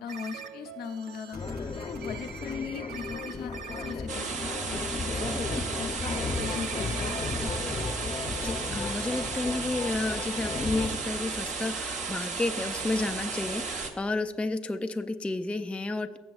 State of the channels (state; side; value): normal; both; correlation 0.67